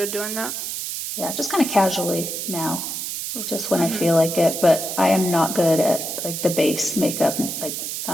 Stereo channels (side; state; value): right; noise; hiss, 5 dB below the sound